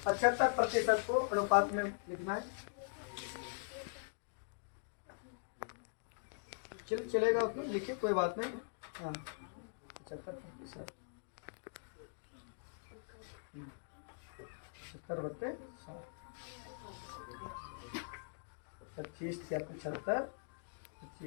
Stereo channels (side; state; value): right; silent; digital silence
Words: 75% को अनुपात में लिखना है। चलेगा उसमें, लिखिए कोई बात नहीं। हाँ 75%, 70/100। 25 क्या 75,